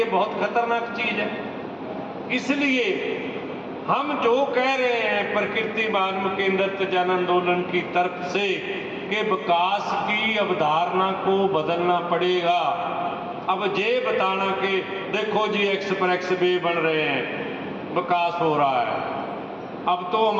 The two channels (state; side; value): identical; both; correlation 1.00